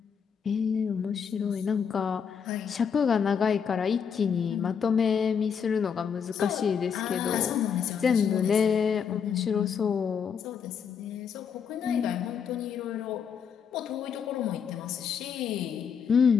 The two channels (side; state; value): right; quieter; 7.0 dB